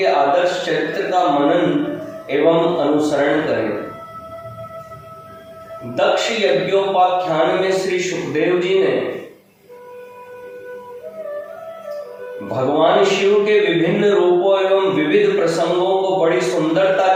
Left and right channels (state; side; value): identical; both; correlation 1.00